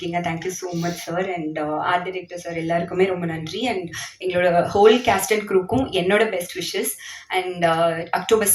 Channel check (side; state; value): both; identical; correlation 1.00